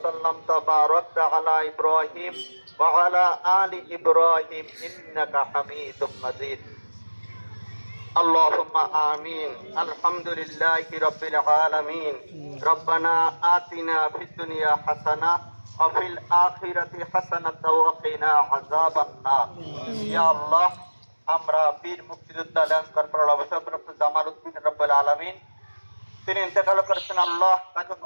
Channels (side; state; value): both; inverted; correlation -1.00